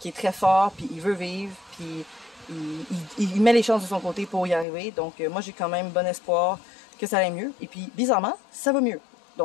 est très fort, puis il veut vivre, puis il met les chances de son côté pour y arriver. Donc, moi, j'ai quand même bon espoir que ça aille mieux. Et puis, bizarrement, ça va mieux.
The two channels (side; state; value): right; drops out; at 4.7 s